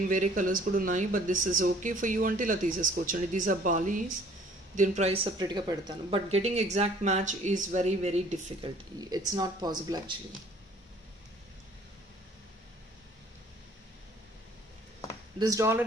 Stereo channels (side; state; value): both; normal; correlation 0.55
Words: వేరే కలర్స్ కూడా ఉన్నాయి, but this is okay for you అంటే ఇలా తీసేసుకోవచ్చు అండి. దీస్ ఆర్ బాలీస్, దీని ప్రైస్ సపరేట్గా పెడతాను. But getting exact match is very very difficult. It's not possible actually. This